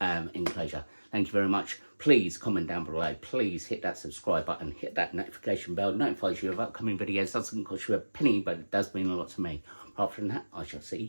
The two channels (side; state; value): both; inverted; correlation -1.00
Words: enclosure. Thank you very much. Please comment down below. Please hit that subscribe button. Hit that notification bell. It notifies you of upcoming videos. Doesn't cost you a penny, but it does mean a lot to me. Apart from that, I shall